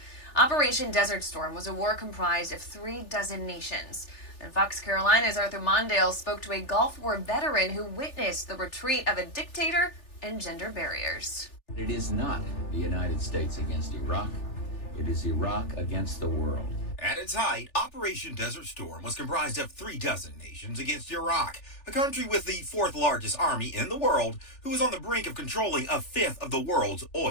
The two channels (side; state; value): right; late; 3.4 ms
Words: Operation Desert Storm was a war comprised of 36 nations. And Fox Carolina's Arthur Mondale spoke to a Gulf War veteran who witnessed the retreat of a dictator and gender barriers. It is not the United States against Iraq. It is Iraq against the world. At its height, Operation Desert Storm was comprised of 36 nations against Iraq, a country with the fourth largest army in the world, who was on the brink of controlling a fifth of the world's